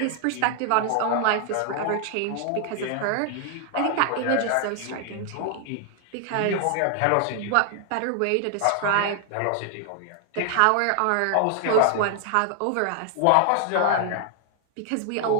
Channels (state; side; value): different; both; correlation 0.00